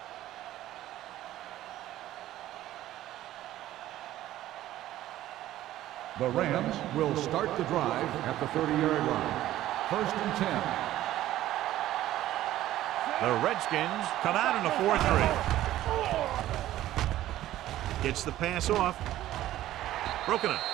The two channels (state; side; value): quieter; left; 14.1 dB